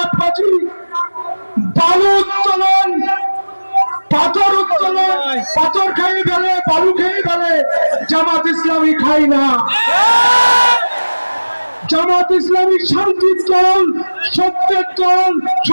বালু উত্তোলন, পাথর উত্তোলন, পাথর খেয়ে ফেলে, বালু খেয়ে ফেলে, জামাত ইসলামী খাই না। জামাত ইসলামী শান্তির দল, সত্যের দল,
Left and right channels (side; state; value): both; inverted; correlation -1.00